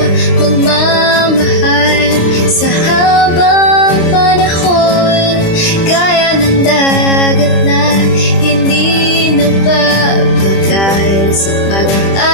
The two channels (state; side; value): late; right; 25 ms